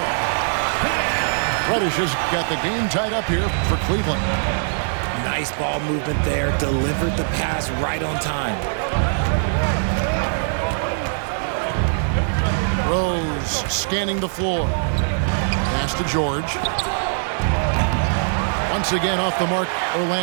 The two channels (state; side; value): silent; left; 59 dB below the other